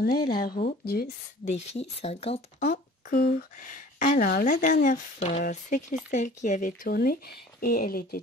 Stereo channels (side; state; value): both; normal; correlation 0.47